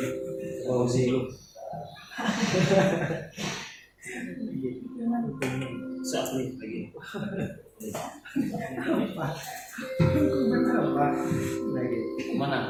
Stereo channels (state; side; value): identical; both; correlation 1.00